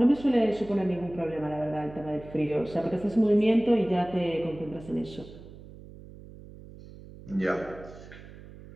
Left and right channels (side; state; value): right; noise; hum, 17 dB below the sound